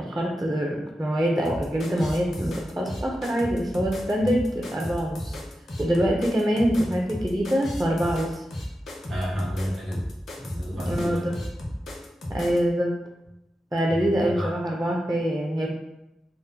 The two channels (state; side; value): normal; both; correlation 0.90